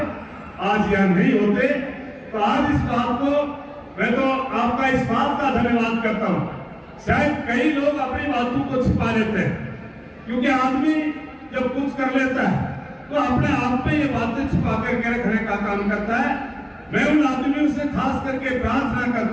आज यहाँ नहीं होते। तो आज इस बात को मैं तो आपका इस बात का धन्यवाद करता हूँ। शायद कई लोग अपनी बातों को छिपा लेते हैं, क्योंकि आदमी जब कुछ कर लेता है तो अपने आप में ये बातें छिपा करके रखने का काम करता है। मैं उन आदमियों से खास करके प्रार्थना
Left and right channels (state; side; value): identical; both; correlation 1.00